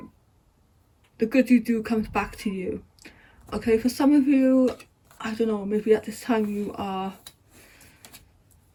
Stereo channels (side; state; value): both; identical; correlation 1.00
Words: good you do comes back to you. Okay, for some of you, I don't know, maybe at this time you are